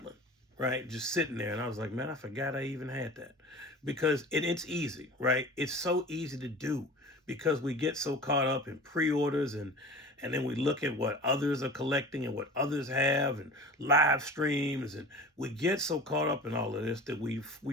right? Just sitting there. And I was like, man, I forgot I even had that. Because it's easy, right? It's so easy to do because we get so caught up in pre-orders and then we look at what others are collecting and what others have and live streams, and we get so caught up in all of this that we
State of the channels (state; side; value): normal; both; correlation 0.37